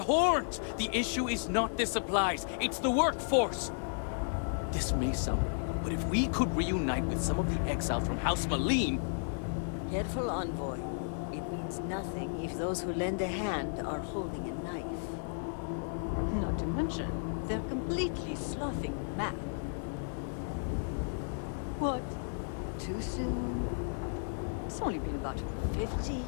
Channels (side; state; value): right; silent; 55 dB below the other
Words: horns! The issue is not the supplies, it's the workforce! This may sound weird, but if we could reunite with some of the exiles from House Malim... Careful, Envoy. It means nothing if those who lend a hand are holding a knife. Not to mention, they're completely sloughing map. What? Too soon? It's only been about 50